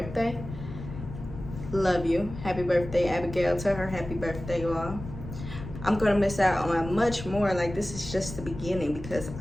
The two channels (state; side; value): noise; left; rumble, 11 dB below the sound